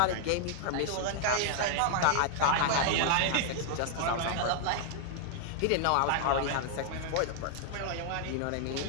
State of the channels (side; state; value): both; different; correlation -0.01